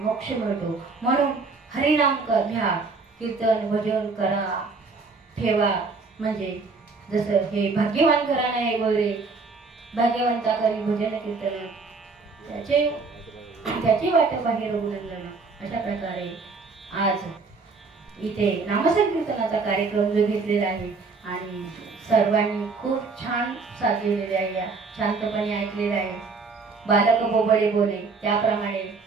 मिळतो. म्हणून हरिनाम घ्या, कीर्तन भजन करा, ठेवा. म्हणजे जसं हे भाग्यवान घराणं आहे वगैरे, भाग्यवंता करी भजन कीर्तन त्याची वाट बाहेर रघुनंदन. अशा प्रकारे आज इथे नामसंकीर्तनाचा कार्यक्रम जो घेतलेला आहे आणि सर्वांनी खूप छान साथ दिलेली आहे, शांतपणे ऐकलेलं आहे. बालक बोबडे बोले त्याप्रमाणे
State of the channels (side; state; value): left; quieter; 4.3 dB